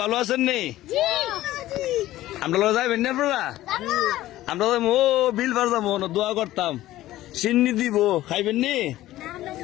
ভালো আছেন নি? আমরা যাইবেন না আপনারা? আমরা ও বিল পারতাম দোয়া করতাম, সিন্নি দিব, খাইবেন নি?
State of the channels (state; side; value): quieter; right; 15.3 dB